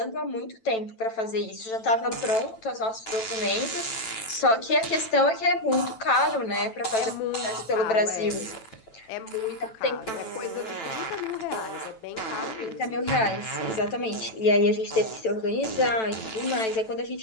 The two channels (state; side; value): late; right; 9.0 ms